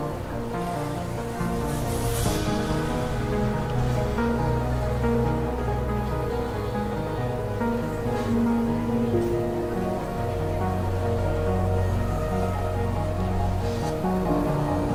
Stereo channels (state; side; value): identical; both; correlation 1.00